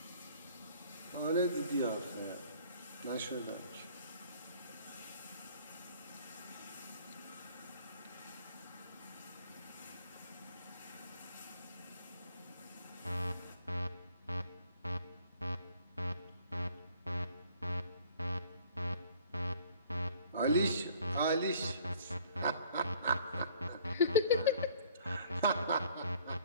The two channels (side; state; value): both; inverted; correlation -0.55